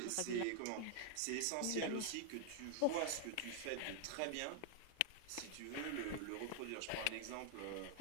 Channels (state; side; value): different; both; correlation 0.00